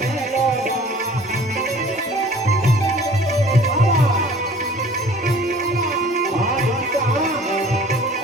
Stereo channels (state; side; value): normal; both; correlation 0.49